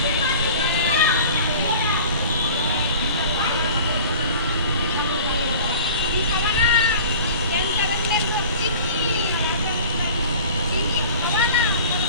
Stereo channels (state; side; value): inverted; both; correlation -0.42